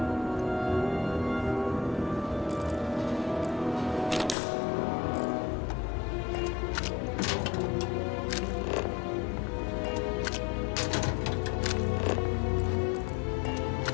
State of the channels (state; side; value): drops out; right; at 4.4 s